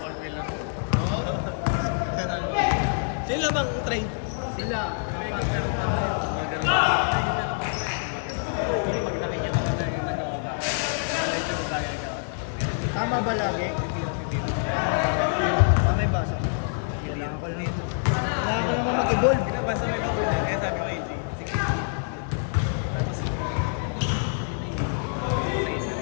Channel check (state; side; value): silent; right; digital silence